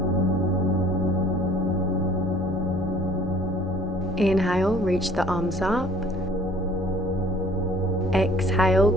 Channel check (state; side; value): normal; both; correlation 0.54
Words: Inhale, reach the arms up. Exhale,